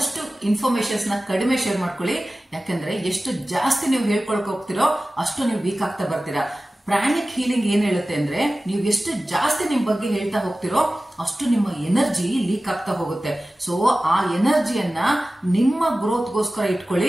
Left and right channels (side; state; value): both; normal; correlation 0.96